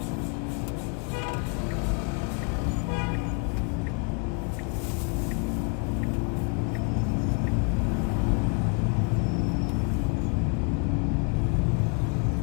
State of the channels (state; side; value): quieter; right; 35.8 dB